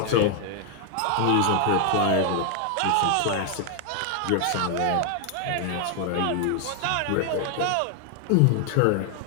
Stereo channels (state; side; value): different; both; correlation 0.00